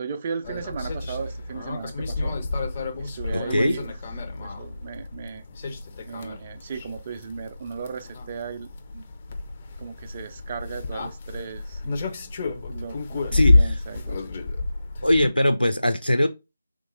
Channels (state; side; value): inverted; both; correlation -0.92